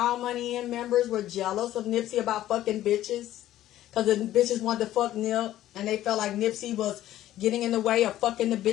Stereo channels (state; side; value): quieter; right; 13.5 dB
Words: Money In members were jealous of Nipsey about fucking bitches? Because the bitches wanted to fuck Nip, and they felt like Nipsey was getting in the way of fucking the